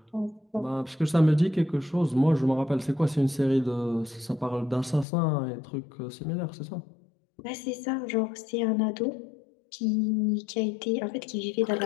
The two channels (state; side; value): drops out; right; at 5.1 s